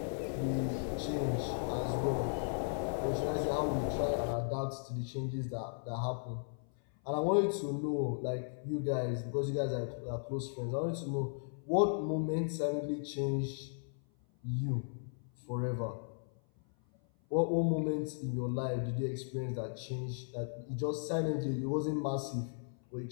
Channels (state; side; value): silent; right; 54 dB below the other